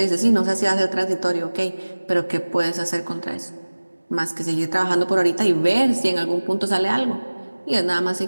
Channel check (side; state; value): both; inverted; correlation -1.00